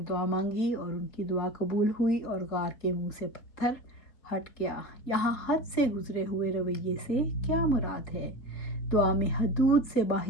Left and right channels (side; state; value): right; late; 3.8 ms